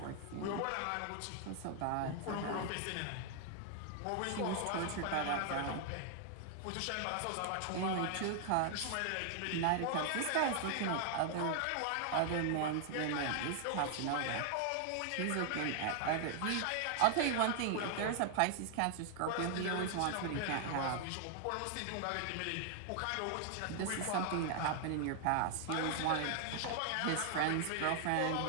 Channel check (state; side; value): different; both; correlation 0.00